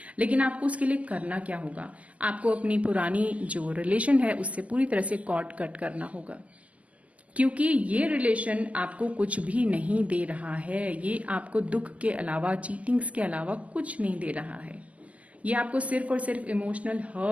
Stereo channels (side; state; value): left; late; 0.070 ms